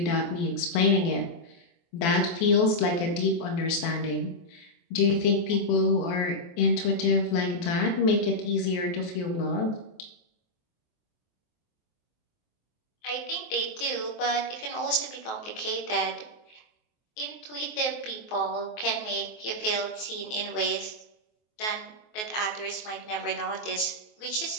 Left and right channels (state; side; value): late; right; 23 ms